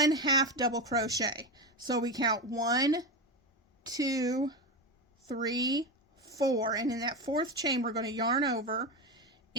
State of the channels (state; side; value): normal; both; correlation 0.16